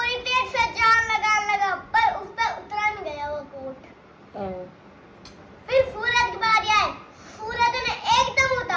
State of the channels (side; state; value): both; identical; correlation 1.00